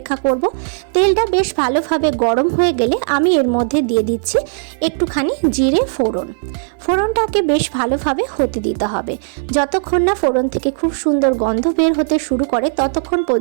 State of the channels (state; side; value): silent; left; 60 dB below the other